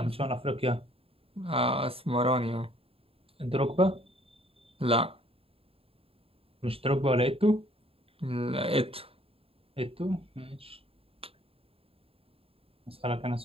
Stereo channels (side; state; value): left; late; 0.27 ms